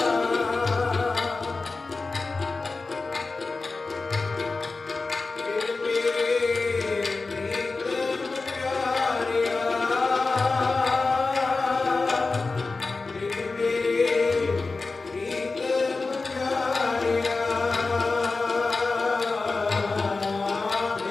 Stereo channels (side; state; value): right; quieter; 3.8 dB